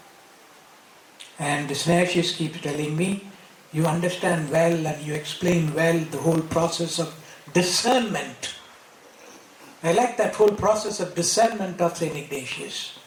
And Snehashis keeps telling me, you understand well and you explain well the whole process of discernment. I like that whole process of discernment of St. Ignatius.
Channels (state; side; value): identical; both; correlation 1.00